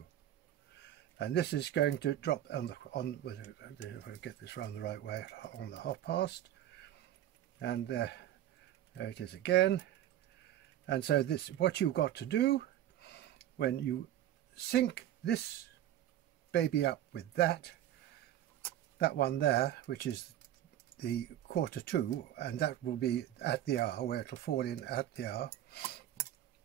And this is going to drop if I get this round the right way, on the half past, and there it is again. And so this, what you've got to do when you sync this baby up with that one there, which is the 1/4 to, and that will be at the hour, where it'll fall in at the hour.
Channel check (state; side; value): quieter; left; 12.2 dB